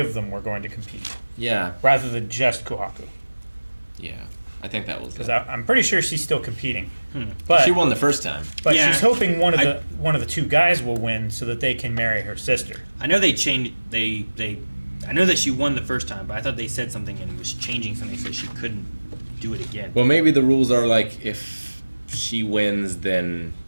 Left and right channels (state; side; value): inverted; both; correlation -1.00